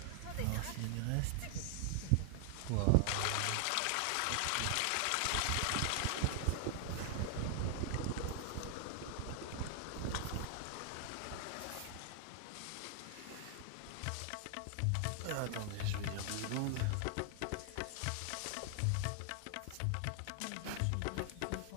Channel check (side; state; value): both; different; correlation 0.00